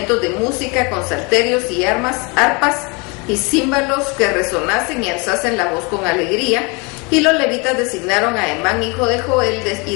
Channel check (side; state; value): right; quieter; 29.8 dB